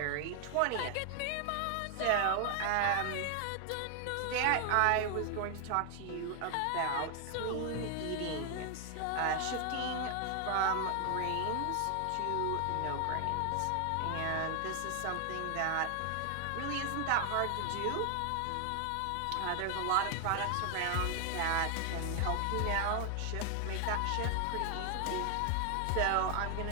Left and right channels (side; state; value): both; different; correlation 0.00